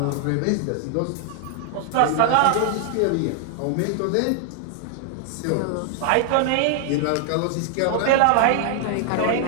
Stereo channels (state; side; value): different; both; correlation 0.00